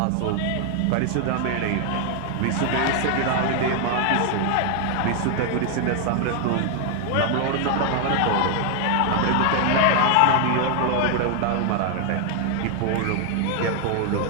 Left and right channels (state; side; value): different; both; correlation 0.00